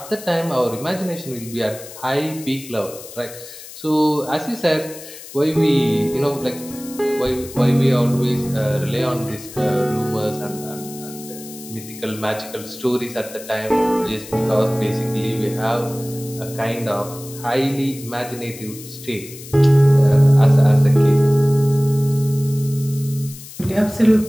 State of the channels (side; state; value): left; noise; hiss, 15 dB below the sound